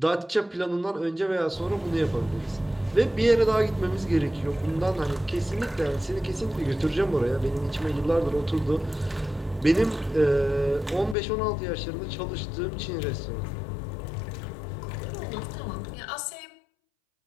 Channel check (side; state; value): right; drops out; at 11.2 s